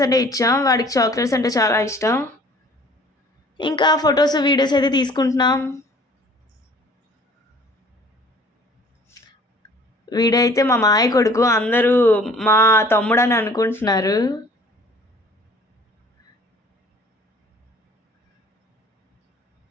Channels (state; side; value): normal; both; correlation 0.52